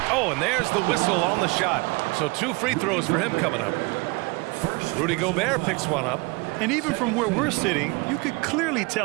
Oh, and there's the whistle on the shot. So 2 free throws for him coming up. Rudy Gobert picks one up. And even from where we're sitting, you could clearly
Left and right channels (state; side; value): quieter; left; 26.4 dB